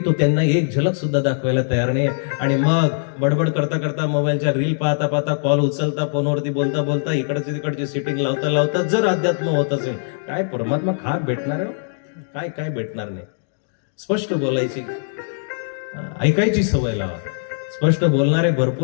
तो त्यांना एक झलक सुद्धा दाखवायला तयार नाही. आणि मग बडबड करता करता, मोबाईलच्या रील पाहता पाहता, कॉल उचलता, फोनवरती बोलता बोलता, इकडची तिकडची सिटिंग लावता लावता जर अध्यात्म होत असेल, काय परमात्मा खाक भेटणार आहे? काय काय भेटणार नाही. स्पष्ट बोलायची, ऐकायची सवय लावा. स्पष्ट बोलणारे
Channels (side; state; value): right; silent; digital silence